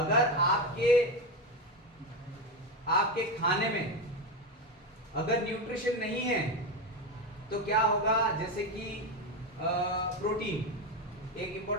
आपके खाने में अगर न्यूट्रिशन नहीं है तो क्या होगा? जैसे कि प्रोटीन एक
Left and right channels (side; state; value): both; normal; correlation 0.14